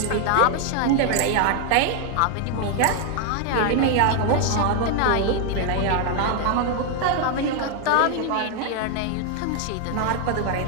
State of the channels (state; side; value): different; both; correlation 0.00